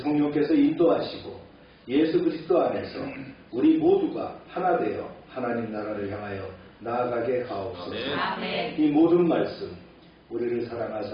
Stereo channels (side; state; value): both; identical; correlation 1.00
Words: 성령께서 인도하시고 예수 그리스도 안에서 우리 모두가 하나 되어 하나님 나라를 향하여 나아가게 하옵소서. 아멘. 이 모든 말씀 우리를